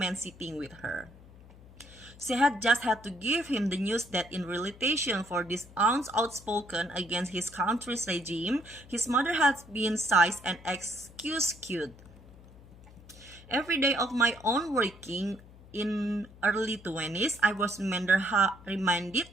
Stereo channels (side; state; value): left; noise; hum, 21 dB below the sound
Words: sitting with her. She had just had to give him the news that in retaliation for this ounce outspoken against his country's regime, his mother had been seized and executed. Every day of my own working in early 20s, I was reminded